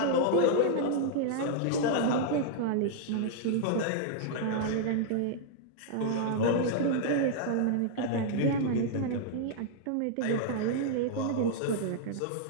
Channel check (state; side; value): different; both; correlation -0.01